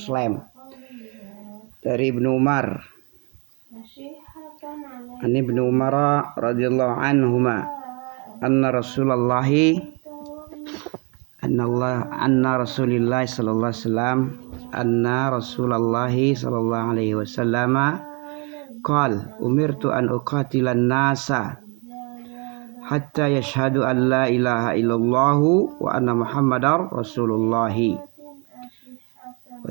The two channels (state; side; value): quieter; left; 32.5 dB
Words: Dari Ibnu Umar. Ani Ibnu Umar radhiyallahu anhuma anna Rasulullah sallallahu alaihi wasallam qala umirtu an uqatilan nasa hatta yashhadu an la ilaha illallah wa anna muhammadar rasulullah wa